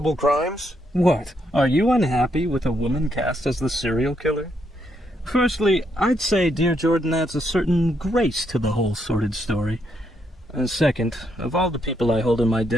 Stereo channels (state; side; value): normal; both; correlation 0.77